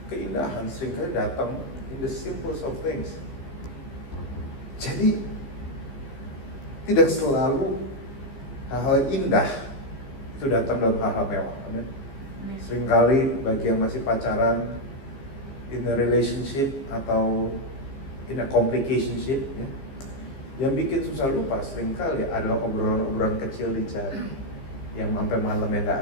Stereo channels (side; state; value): right; late; 15 ms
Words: keindahan seringkali datang in the simplest of things. Jadi tidak selalu hal-hal indah itu datang dalam hal-hal mewah. Seringkali bagi yang masih pacaran, in a relationship atau in a complicationship, yang bikin susah lupa seringkali adalah obrolan-obrolan kecil di jalan yang sampai malam yang